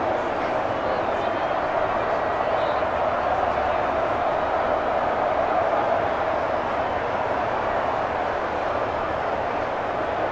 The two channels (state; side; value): identical; both; correlation 1.00